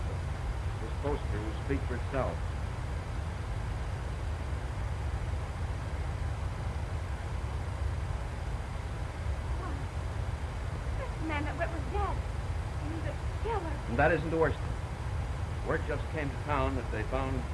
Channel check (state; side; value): identical; both; correlation 1.00